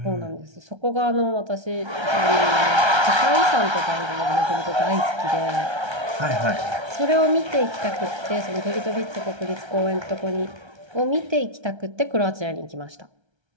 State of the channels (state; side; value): late; left; 1.3 ms